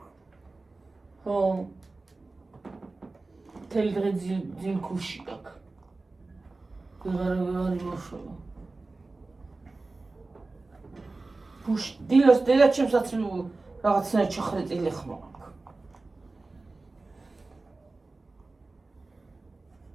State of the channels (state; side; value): quieter; left; 3.4 dB